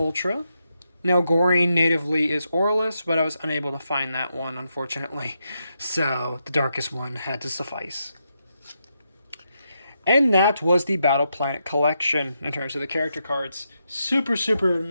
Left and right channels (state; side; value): inverted; both; correlation -0.83